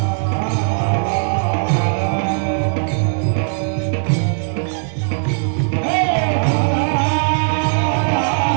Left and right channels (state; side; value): silent; left; digital silence